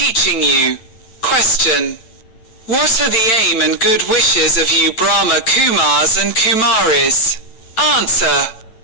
you. Question. What are the aim and good wishes of you Brahma Kumars and Kumaris? Answer.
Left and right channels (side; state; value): right; late; 8.9 ms